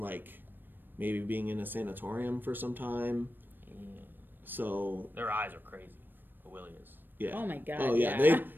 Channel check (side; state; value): left; late; 0.093 ms